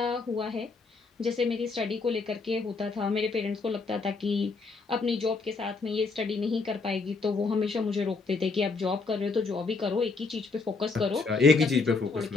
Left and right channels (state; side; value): quieter; right; 4.2 dB